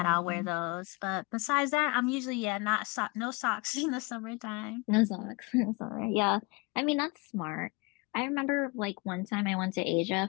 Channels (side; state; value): right; quieter; 27.4 dB